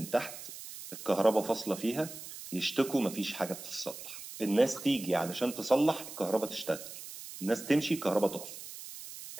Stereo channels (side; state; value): right; noise; hiss, 12 dB below the sound